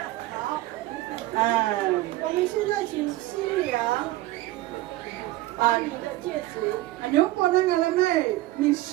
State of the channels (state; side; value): quieter; left; 17.2 dB